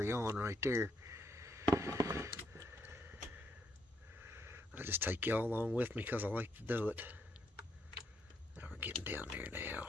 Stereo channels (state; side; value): normal; both; correlation 0.76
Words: on right there. I just take y'all along with me because I like to do it. Now we're getting down there now.